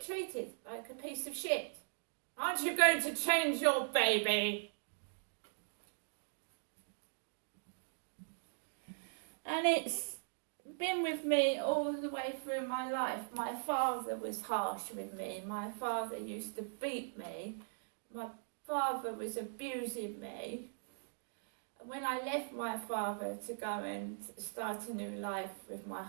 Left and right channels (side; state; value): left; silent; digital silence